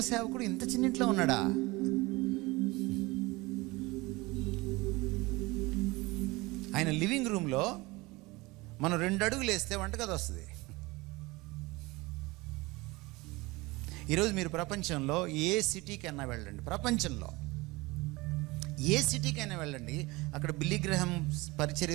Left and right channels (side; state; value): left; quieter; 22.6 dB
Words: సేవకుడు ఇంత చిన్నింట్లో ఉన్నాడా? ఆయన లివింగ్ రూమ్లో మనం 2 అడుగులు వేస్తే వంటగది వస్తుంది. ఈరోజు మీరు ప్రపంచంలో ఏ సిటీకైనా వెళ్ళండి, ప్రపంచంలో ఏ సిటీకైనా వెళ్ళండి, అక్కడ బిల్లీ గ్రాహం